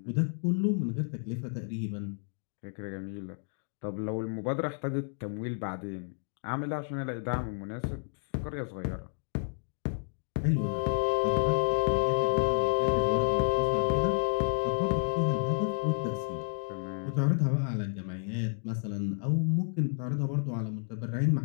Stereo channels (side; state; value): right; silent; 55 dB below the other